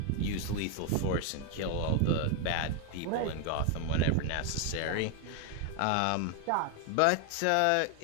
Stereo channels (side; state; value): both; different; correlation 0.01